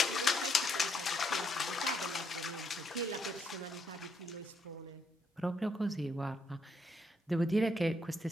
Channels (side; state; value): both; normal; correlation 0.75